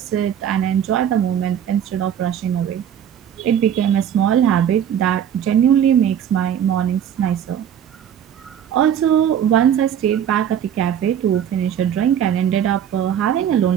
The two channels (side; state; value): left; quieter; 9.3 dB